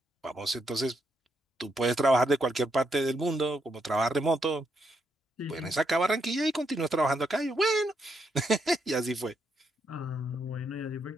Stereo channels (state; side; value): normal; both; correlation 0.79